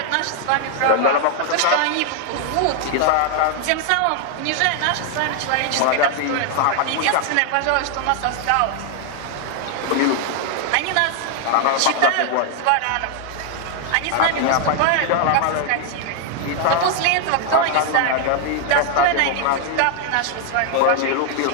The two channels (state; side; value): different; both; correlation 0.00